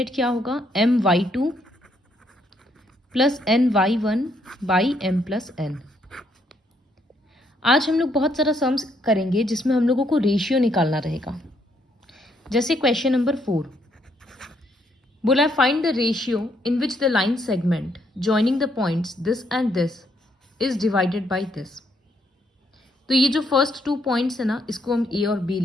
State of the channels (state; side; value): normal; both; correlation 0.73